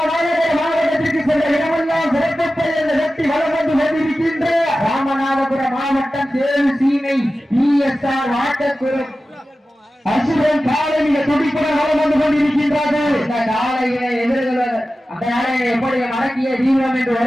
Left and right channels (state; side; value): normal; both; correlation 0.94